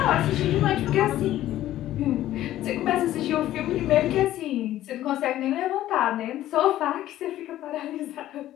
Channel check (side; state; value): right; quieter; 13.7 dB